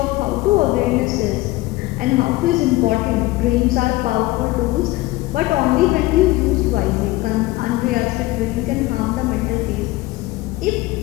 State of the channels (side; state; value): right; quieter; 19.2 dB